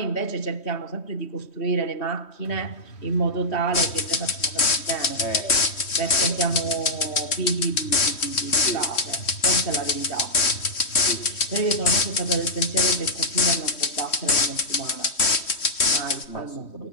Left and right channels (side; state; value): right; late; 3.1 ms